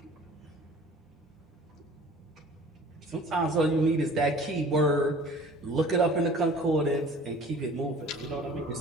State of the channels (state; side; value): normal; both; correlation 0.47